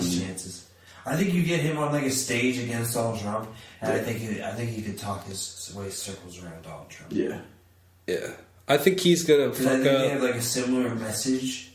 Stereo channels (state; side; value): identical; both; correlation 1.00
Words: chances. I think you get him on like a stage against Donald Trump, and I think he could talk his way circles around Donald Trump. Yeah. Yeah. I think he's gonna fuck I think up. they have like a similar message.